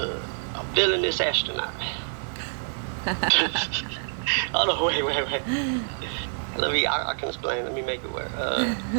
villainous astronaut. Hold on, wait. I can explain. Let me make it work.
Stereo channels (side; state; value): left; silent; digital silence